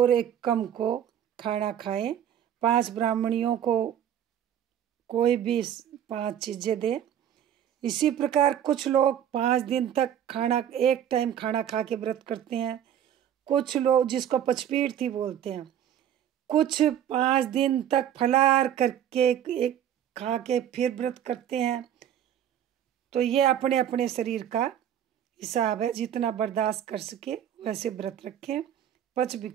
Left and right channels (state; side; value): quieter; left; 10.1 dB